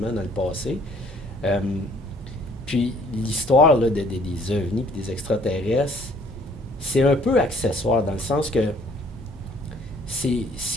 dans le passé. Puis l'histoire là, des ovnis et des extraterrestres, c'est un peu accessoire dans le sens que ce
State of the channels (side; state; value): both; normal; correlation 0.60